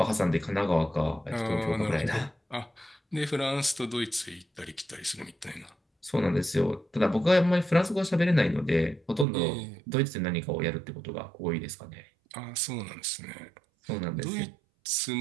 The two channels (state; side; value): drops out; left; at 9.2 s